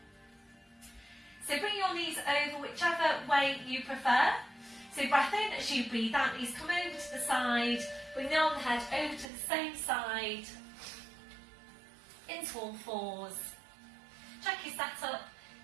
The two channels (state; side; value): drops out; left; at 9.2 s